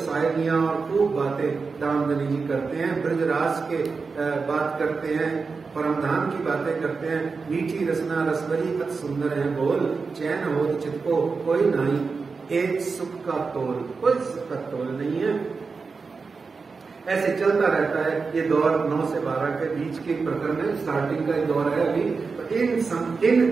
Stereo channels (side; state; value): left; quieter; 4.7 dB